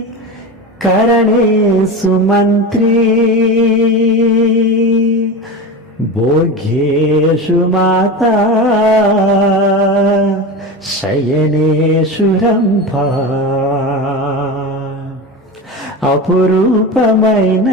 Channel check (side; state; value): both; normal; correlation 0.25